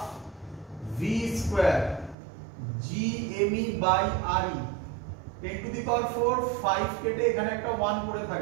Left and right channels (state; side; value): drops out; left; at 2.1 s